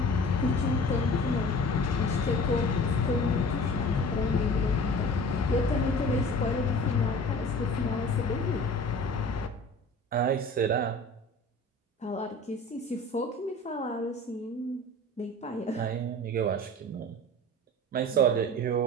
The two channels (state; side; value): normal; both; correlation 0.42